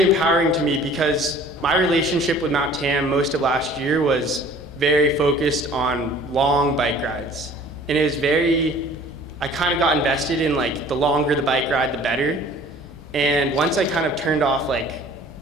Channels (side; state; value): both; normal; correlation 0.49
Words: empowering to me, because my relationship with Mount Tam most of last year was very focused on long bike rides. And it was I kind of got invested in like the longer the bike ride, the better. And once I kind of turned off like